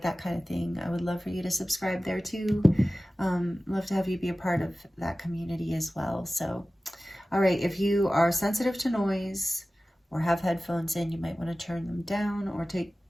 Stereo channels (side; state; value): both; normal; correlation 0.96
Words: that kind of thing, I would love for you to subscribe there too. Love to have you be a part of that community as well. So, all right, if you are sensitive to noise or have headphones in, you might want to turn them down or take